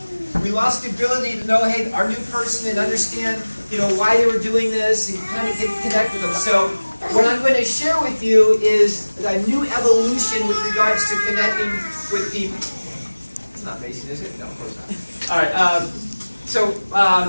We lost the ability to know, hey, our new person and understand, why they were doing this and kind of connect with them. So what I'm going to share with you is a new evolution with regards to connecting with people. It's not facing, is it? No, of course not. All right.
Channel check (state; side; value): inverted; both; correlation -1.00